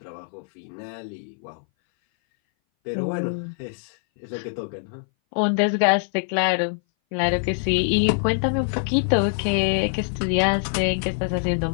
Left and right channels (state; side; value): silent; right; 59 dB below the other